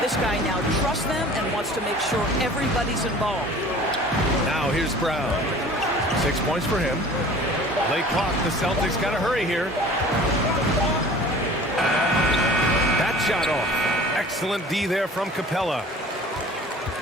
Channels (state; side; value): normal; both; correlation 0.45